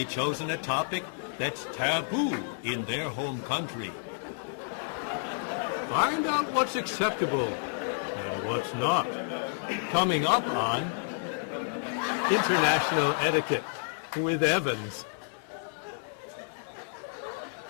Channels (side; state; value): right; silent; 58 dB below the other